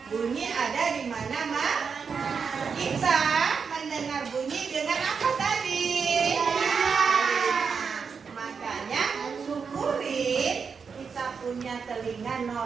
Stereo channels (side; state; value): left; quieter; 5.8 dB